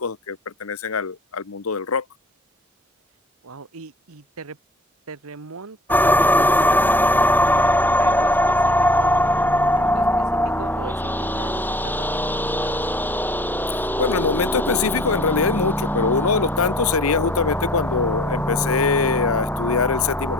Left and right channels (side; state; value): both; normal; correlation 0.50